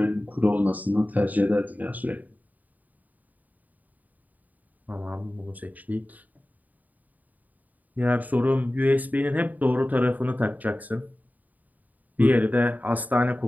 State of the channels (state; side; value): late; left; 0.079 ms